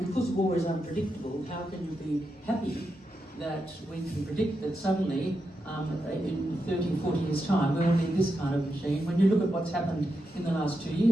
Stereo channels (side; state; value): both; normal; correlation 0.86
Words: because war is unpredictable, how can you be happy that we can predict that suddenly in 30, 40 years' time we'll need this kind of machine? When you look at what's happened in the last 2